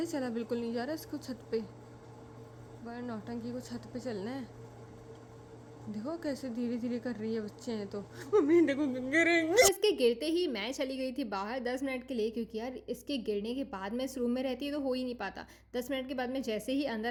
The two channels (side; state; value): both; identical; correlation 1.00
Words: चला बिल्कुल नहीं जा रहा इसको छत पे। बड़ा नौटंकी को छत पे चलना है। देखो कैसे धीरे धीरे कर रही है, बच्चे हैं तो। मम्मी देखो गिरेंगे। तो इसके गिरते ही मैं चली गई थी बाहर 10 मिनट के लिए, क्योंकि यार इसके गिरने के बाद मैं इस रूम में रहती तो हो ही नहीं पाता। 10 मिनट के बाद मैं जैसे ही